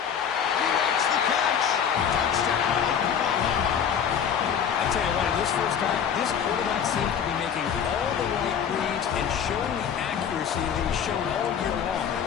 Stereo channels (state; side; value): quieter; right; 7.9 dB